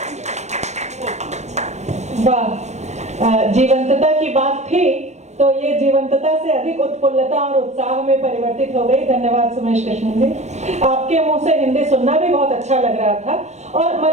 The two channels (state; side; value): late; left; 0.33 ms